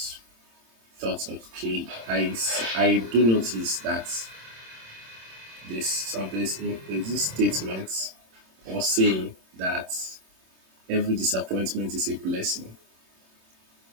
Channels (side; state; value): left; late; 26 ms